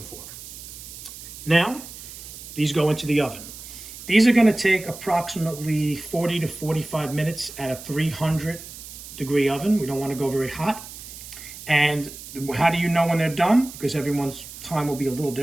for. Now, these go into the oven. These are going to take approximately 40 to 45 minutes at a 300-degree oven. We don't want to go very hot. And how do you know when they're done? Because everyone's time will be a little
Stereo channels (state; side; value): noise; right; hiss, 14 dB below the sound